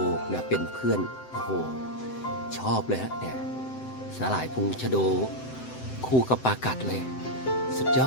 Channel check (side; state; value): right; late; 7.8 ms